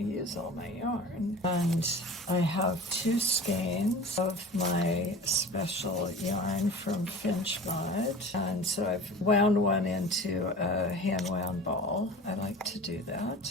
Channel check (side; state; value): both; normal; correlation 0.38